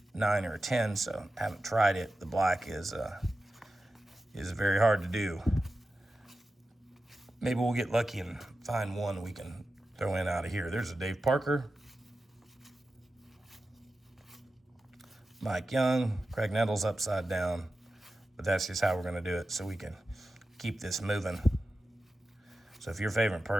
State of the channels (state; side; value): normal; both; correlation 0.92